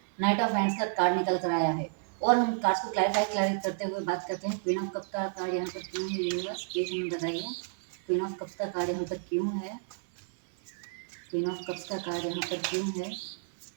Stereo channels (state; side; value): silent; left; 57 dB below the other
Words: नाइट ऑफ हैंड्स का कार्ड निकल कर आया है और हम कार्ड्स को क्लैरिफाई करते हुए बात करते हैं। क्वीन ऑफ कप्स का कार्ड यहाँ पर क्यों है यूनिवर्स, प्लीज हमें बताइए। क्वीन ऑफ कप्स का कार्ड यहाँ पर क्यों है, क्वीन ऑफ कप्स का कार्ड यहाँ पर क्यों है।